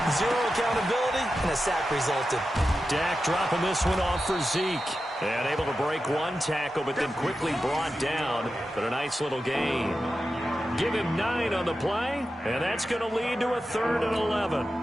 Zero accountability. and a sack resulted. Dak dropping this one off for Zeke. And able to break one tackle, but then quickly brought down. But a nice little gain. Give him 9 on the play, and that's going to lead to a 3rd and 11.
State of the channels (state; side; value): normal; both; correlation 0.91